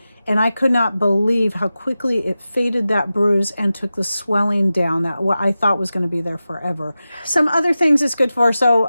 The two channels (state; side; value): inverted; both; correlation -0.94